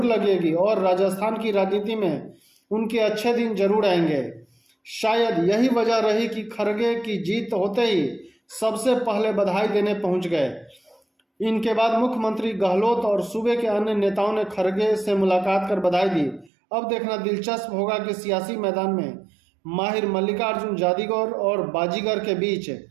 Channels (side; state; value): left; drops out; at 16.5 s